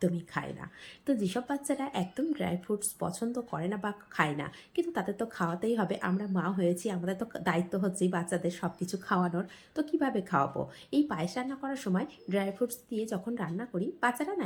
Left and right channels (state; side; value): identical; both; correlation 1.00